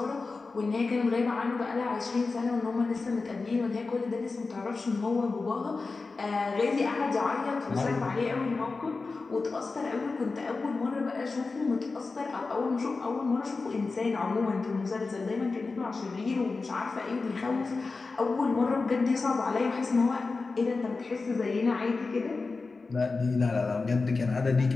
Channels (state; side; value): quieter; right; 4.0 dB